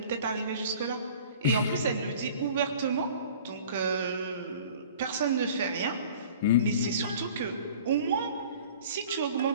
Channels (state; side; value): inverted; both; correlation -0.46